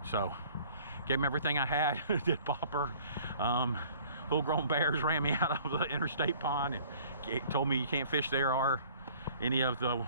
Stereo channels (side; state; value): both; inverted; correlation -0.52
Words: So gave him everything I had. Did popper. Full-grown bears ran me out of the interstate pond and told me you can't fish there or any of the